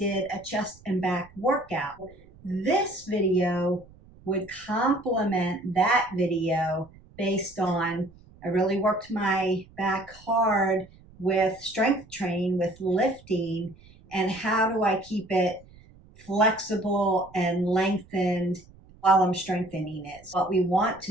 a chest and back workout. This video would complement that video based on I really worked my back hard with strength training, with lifting, and how do I keep it flexible and lengthened while I'm strengthening it. So what we want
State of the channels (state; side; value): noise; right; rumble, 24 dB below the sound